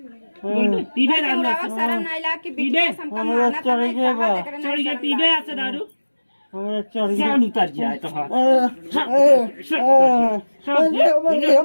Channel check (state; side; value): inverted; both; correlation -1.00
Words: पीबे दारू शर्म नहीं लाग कि पीबे हमका माना तो नहीं चढ़ गया पीबे ऐसे दारू हमरा चढ़ गया जान उतर जाए तो हाँ